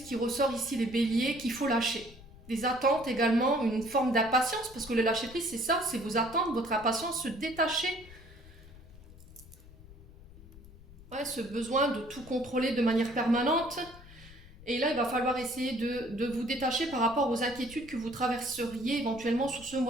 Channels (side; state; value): left; noise; rumble, 20 dB below the sound